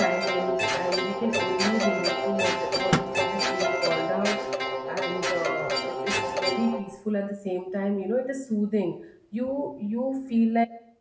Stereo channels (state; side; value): identical; both; correlation 1.00